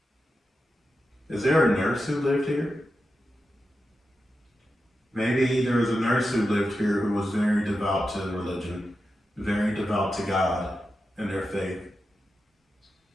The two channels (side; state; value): both; normal; correlation 0.90